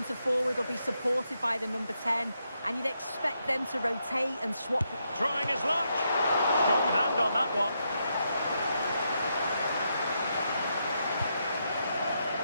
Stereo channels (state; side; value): inverted; both; correlation -0.81